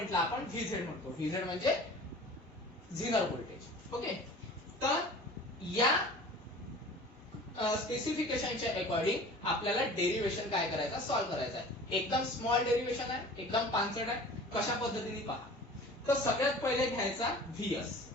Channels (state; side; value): normal; both; correlation 0.42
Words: आपण व्हीझेड म्हणतो. व्हीझेड म्हणजे झिनर व्होल्टेज. ओके. तर या स्पेसिफिकेशनच्या अकॉर्डिंग आपल्याला डेरिवेशन काय करायचं, सॉल्व्ह करायचं आहे. एकदम स्मॉल डेरिवेशन आहे, एकदम पानसट आहे. कशा पद्धतीने पहा. तर सगळ्यात पहिले घ्यायचा व्हीएस.